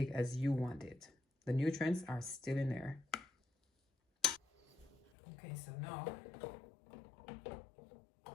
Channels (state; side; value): drops out; right; at 5.1 s